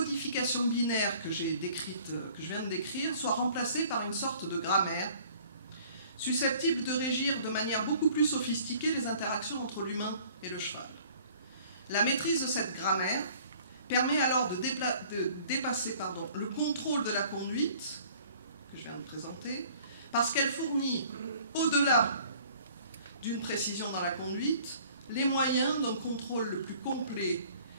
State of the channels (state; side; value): inverted; both; correlation -0.53